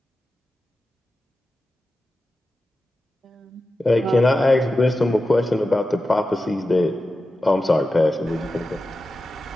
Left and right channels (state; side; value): normal; both; correlation 0.92